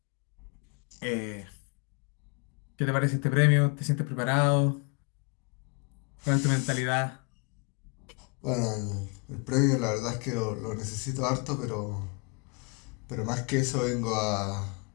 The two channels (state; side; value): quieter; right; 33.8 dB